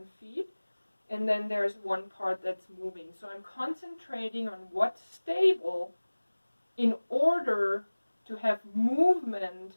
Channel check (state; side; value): inverted; both; correlation -1.00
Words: feet. And then there's one part that's moving. So I'm concentrating on what's stable in order to have movement